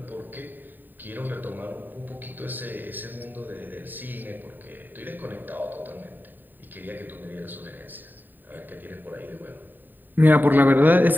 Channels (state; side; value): late; left; 0.090 ms